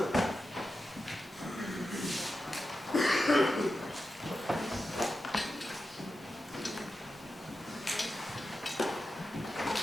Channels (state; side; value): normal; both; correlation 0.90